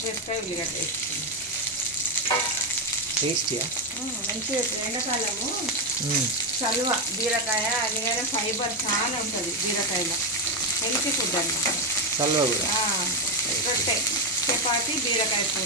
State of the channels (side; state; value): both; normal; correlation 0.07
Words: ఉల్లిగడ్డ వేసుకున్నాం. టేస్టీయా? మంచిగా. ఎండాకాలము చలువ బీరకాయ, అందుకనే ఫైబర్ చాలా ఉంటుంది బీరకాయలో. హెల్తీ ఫుడ్ అన్నమాట. చలువ కూడా. రొట్టె, చపాతి, బీరకాయ